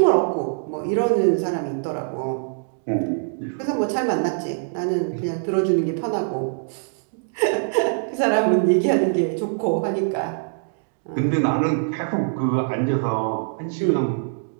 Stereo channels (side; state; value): left; silent; digital silence